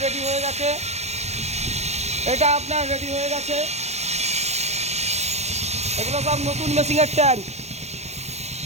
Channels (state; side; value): late; left; 0.32 ms